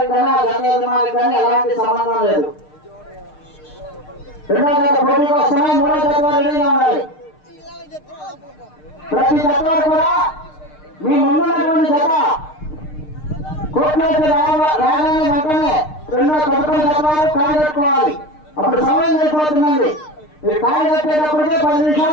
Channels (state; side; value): late; right; 6.6 ms